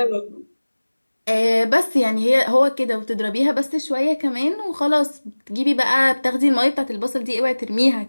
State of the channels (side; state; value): both; inverted; correlation -1.00